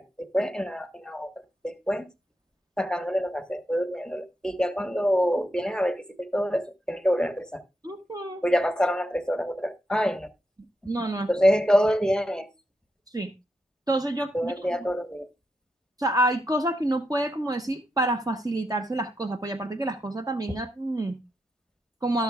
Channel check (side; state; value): both; normal; correlation 0.84